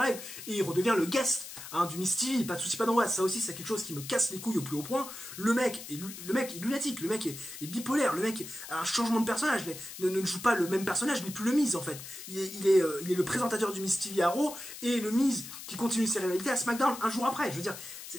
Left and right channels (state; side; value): noise; left; hiss, 12 dB below the sound